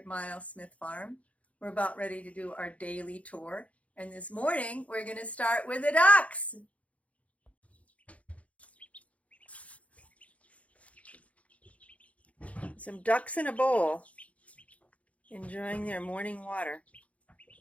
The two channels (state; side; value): late; right; 0.065 ms